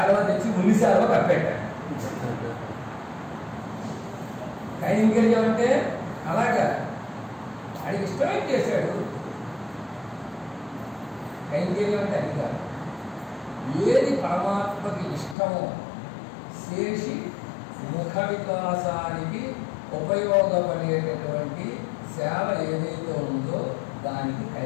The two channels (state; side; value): drops out; right; at 15.4 s